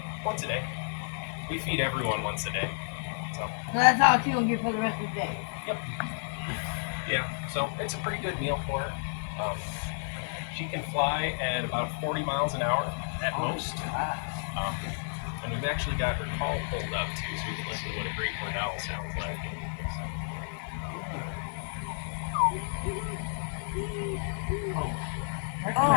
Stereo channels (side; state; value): right; silent; digital silence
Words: once a day. We feed everyone once a day. So So that's all she'll get for the rest of the day. yeah, so it's a pretty good meal for her. She can fly at about 40 miles an hour at most. And we've actually got her call pulled up too, so we can listen to what a great horned owl sounds like.